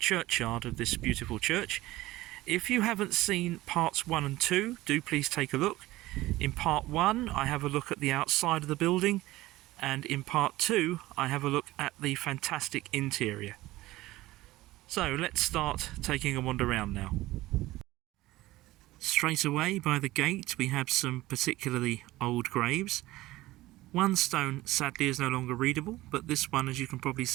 of this beautiful church. If you haven't seen parts 1 and 2, do please take a look. In part 1 I have a look at the outside of the building, and in part 2 I have a look at the fantastic interior. So let's start taking a wander around now. Straight away by the gate we have some particularly old graves. One stone sadly is no longer readable, but this one, as you can probably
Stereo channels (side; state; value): left; quieter; 17.7 dB